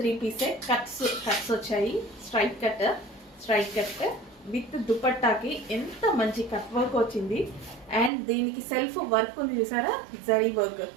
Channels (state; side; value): drops out; left; at 8.1 s